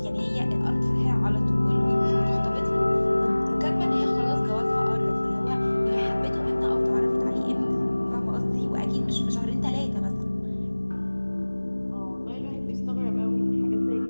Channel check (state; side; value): inverted; both; correlation -1.00